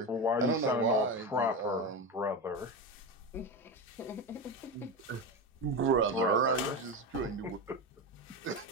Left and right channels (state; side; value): normal; both; correlation 0.19